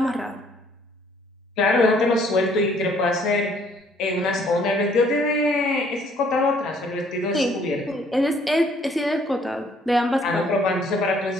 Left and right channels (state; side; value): normal; both; correlation 0.62